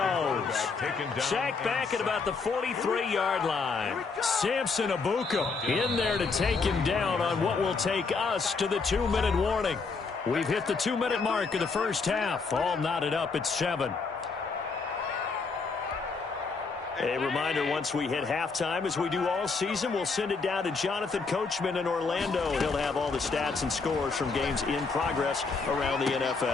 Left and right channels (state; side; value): quieter; right; 4.6 dB